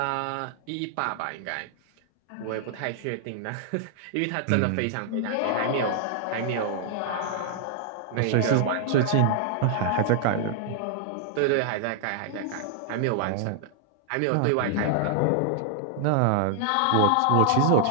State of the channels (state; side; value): different; both; correlation -0.01